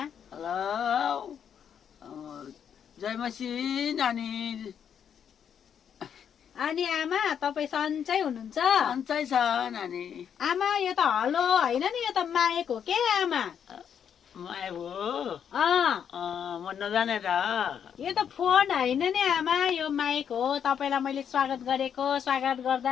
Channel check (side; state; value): right; quieter; 8.2 dB